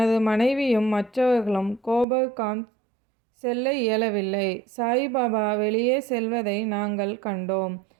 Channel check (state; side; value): drops out; left; at 2.1 s